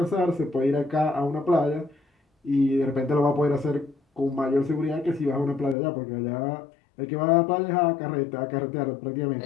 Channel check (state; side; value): drops out; right; at 5.8 s